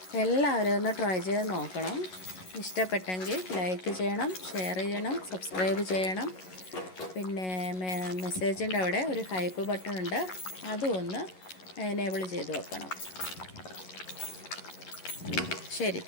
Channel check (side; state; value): right; late; 11 ms